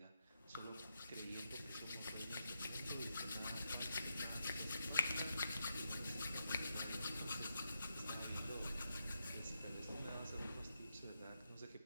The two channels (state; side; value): inverted; both; correlation -0.84